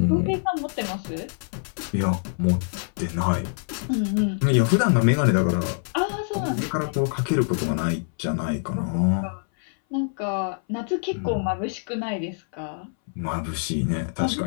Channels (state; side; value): silent; right; 60 dB below the other